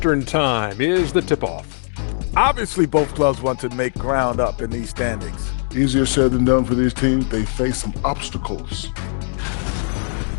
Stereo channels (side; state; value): right; silent; digital silence